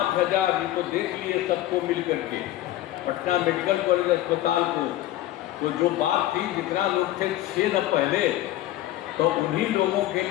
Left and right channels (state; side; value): quieter; right; 14.7 dB